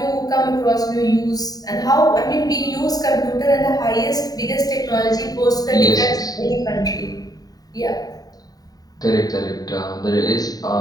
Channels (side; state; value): right; late; 0.18 ms